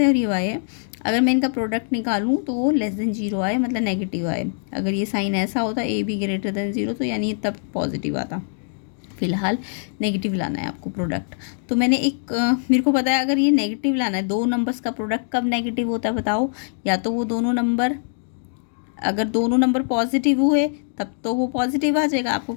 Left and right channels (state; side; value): silent; right; digital silence